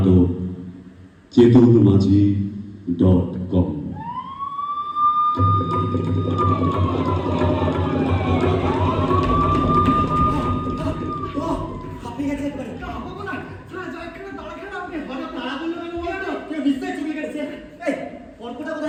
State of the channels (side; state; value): both; identical; correlation 1.00